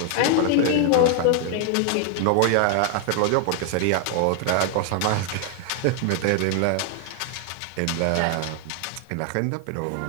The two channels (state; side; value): different; both; correlation 0.00